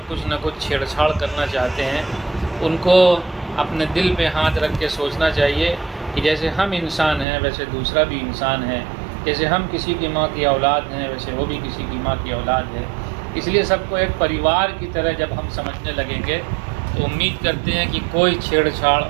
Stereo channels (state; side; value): drops out; left; at 7.2 s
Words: कुछ न कुछ छेड़छाड़ करना चाहते हैं, उनको अपने दिल पे हाथ रख के सोचना चाहिए कि जैसे हम इंसान हैं वैसे दूसरा भी इंसान है, जैसे हम किसी की माँ की औलाद हैं वैसे वो भी किसी की माँ की औलाद है। इसलिए सबको एक परिवार की तरह जब हम समझने लगेंगे तो उम्मीद करते हैं कि कोई छेड़छाड़